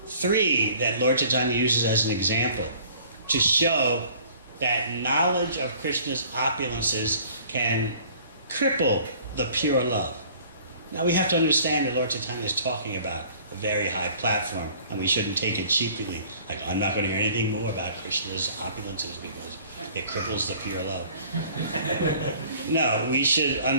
three that Lord Chaitanya uses as an example to show that knowledge of Krishna's opulences can cripple the pure love. Now we have to understand that Lord Chaitanya is talking about a very high platform, and we shouldn't take it cheaply. Like, I'm not going to hear anything more about Krishna's opulences because it cripples the pure love. No, we should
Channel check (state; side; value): inverted; both; correlation -0.52